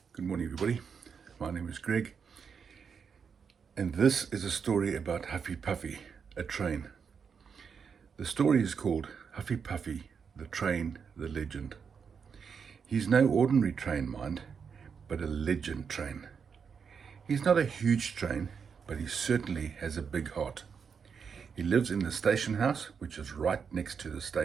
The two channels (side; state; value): left; quieter; 6.3 dB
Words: Good morning, everybody. My name is Greg, and this is a story about Huffy Puffy, a train. The story is called Huffy Puffy, the Train, the Legend. He's no ordinary train, mind, but a legend train. He's not a huge train, but he certainly has a big heart. He lives in the station house, which is right next to the